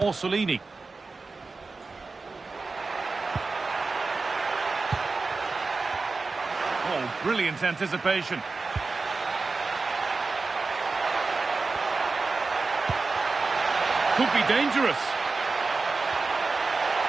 Orsolini. Oh, brilliant anticipation. Could be dangerous.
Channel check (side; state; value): left; quieter; 4.0 dB